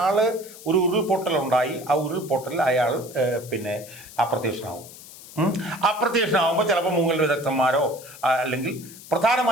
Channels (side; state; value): left; noise; hiss, 17 dB below the sound